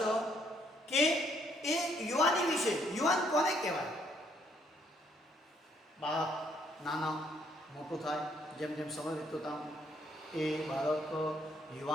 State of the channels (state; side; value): normal; both; correlation 0.69